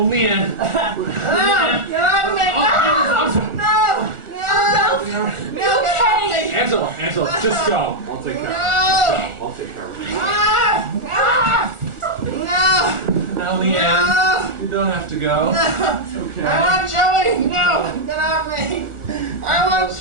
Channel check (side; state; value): left; late; 1.4 ms